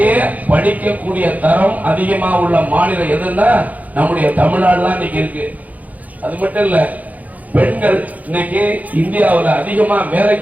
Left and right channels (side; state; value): left; late; 0.077 ms